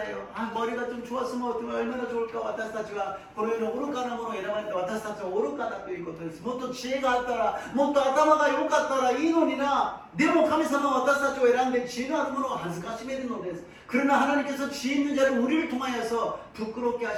아, 머리가 좀 좋았으면 얼마나 좋을까. 私たちはこの世の愚かなものを選ばれて、私たちは愚かだということです。もっと知恵があったら、もっと頭が良かったらいいのにな。でも神様は私たちを選んで知恵のあるものを恥ずかしめるのです。 그러나 하나님께서 지혜 있는 자를 우리를 통하여서 부끄럽게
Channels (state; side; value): identical; both; correlation 1.00